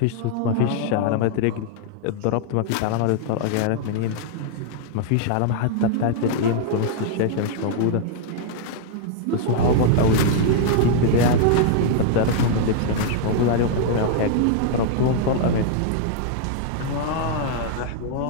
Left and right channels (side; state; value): both; different; correlation -0.01